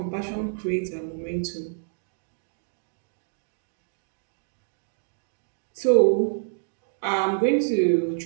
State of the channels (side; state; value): left; silent; digital silence